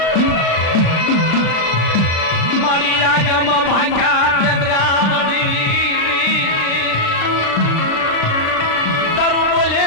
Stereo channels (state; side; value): late; right; 36 ms